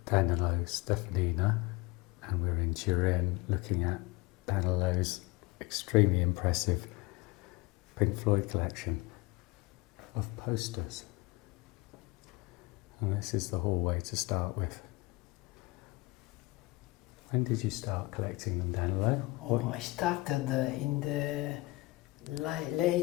Danilo Steffanina, and we're in Turin looking at Danilo's extremely impressive Pink Floyd collection of posters. And this is the hallway to start with. When did you start collecting them, Danilo? I started in the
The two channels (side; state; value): right; quieter; 22.5 dB